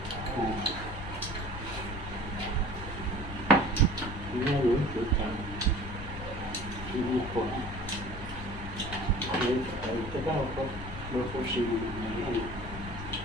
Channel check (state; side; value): noise; left; rumble, 10 dB below the sound